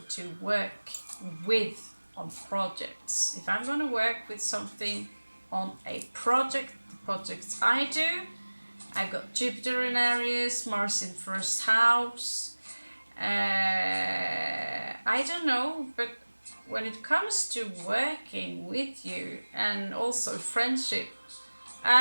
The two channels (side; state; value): both; inverted; correlation -1.00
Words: to work with on projects. If I'm going to work with something on a project, the projects I do, I've got Jupiter in Aries, Mars in first house. I don't know, but when it comes to working with you and also friendship,